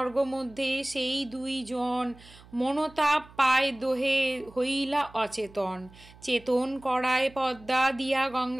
সেই 2 জন, মনোতাপ পায় দোহে হইলা অচেতন। চেতন করায় পদ্মা দিয়া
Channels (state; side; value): noise; right; hum, 23 dB below the sound